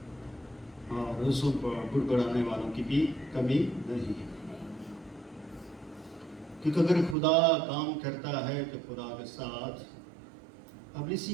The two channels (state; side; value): drops out; left; at 7.2 s